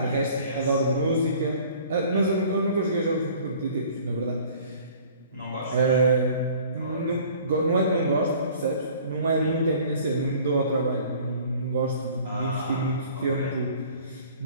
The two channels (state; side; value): inverted; both; correlation -0.50